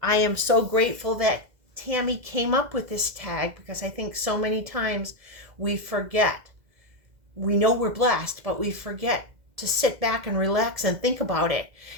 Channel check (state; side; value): late; left; 2.0 ms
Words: I am so grateful that Tammy came up with this tag because I think so many times we forget. We know we're blessed, but we forget to sit back and relax and think about it.